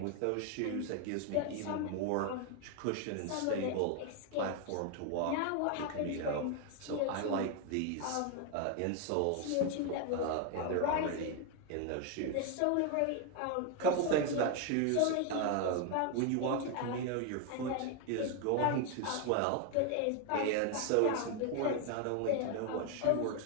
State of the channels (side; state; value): both; different; correlation 0.01